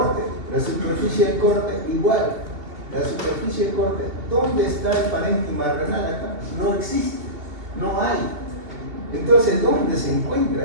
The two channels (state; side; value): late; left; 2.7 ms